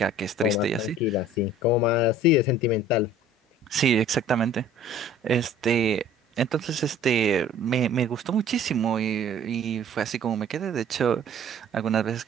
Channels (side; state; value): both; normal; correlation 0.50